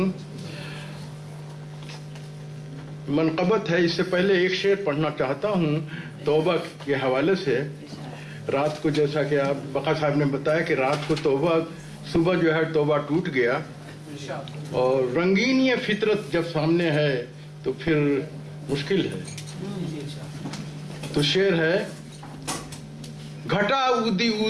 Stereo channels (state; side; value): identical; both; correlation 1.00